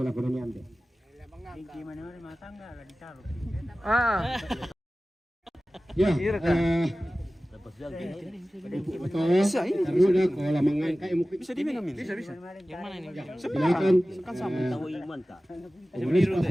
ako na niyan. Ah, Ya, Iya, Kak. ito, karuda ko lamangan kayo mo. Bisa diminum ini. bisa. Yang mana ini? Silakan. Kan sama tahu iman tak.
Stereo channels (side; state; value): both; normal; correlation 0.96